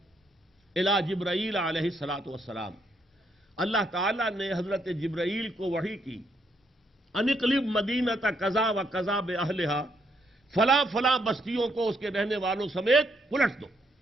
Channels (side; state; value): both; normal; correlation 0.74